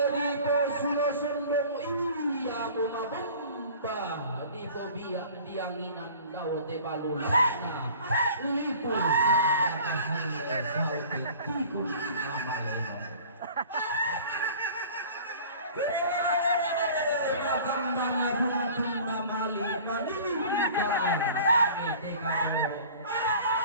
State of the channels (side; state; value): both; inverted; correlation -0.45